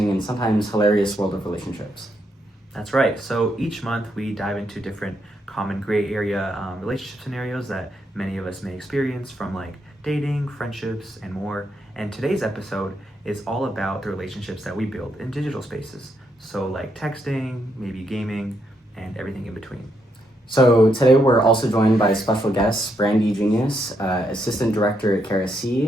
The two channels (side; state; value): both; normal; correlation 0.78